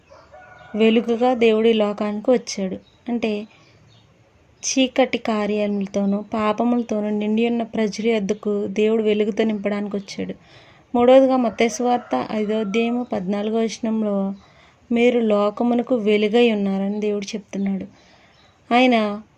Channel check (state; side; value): identical; both; correlation 1.00